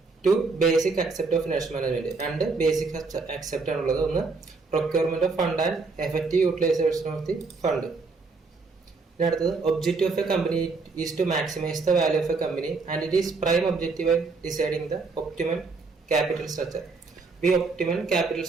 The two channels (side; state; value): left; quieter; 4.1 dB